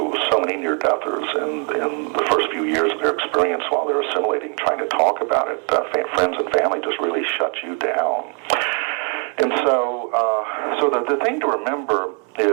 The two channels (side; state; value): left; quieter; 38.9 dB